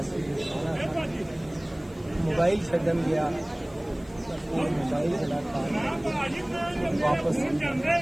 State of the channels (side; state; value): left; noise; hiss, 28 dB below the sound